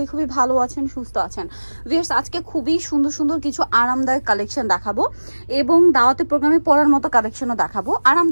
খুবই ভালো আছেন, সুস্থ আছেন। ভিউয়ার্স, আজকে খুবই সুন্দর সুন্দর কিছু আরামদায়ক কালেকশন দেখাবো এবং দাওয়াতে প্রোগ্রামে পরার মতো কালেকশনও দেখাবো।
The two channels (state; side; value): inverted; both; correlation -1.00